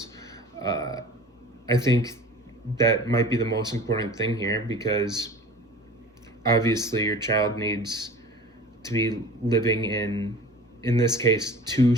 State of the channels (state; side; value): normal; both; correlation 0.41